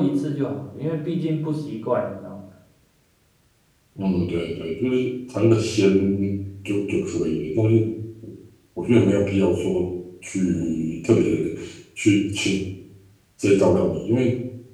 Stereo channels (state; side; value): identical; both; correlation 1.00